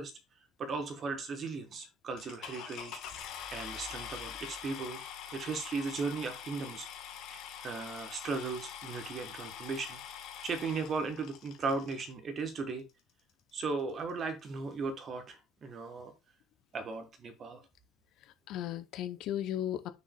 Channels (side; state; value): both; normal; correlation 0.60